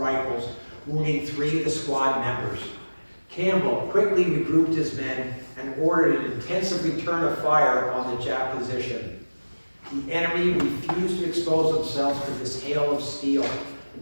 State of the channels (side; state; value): both; inverted; correlation -1.00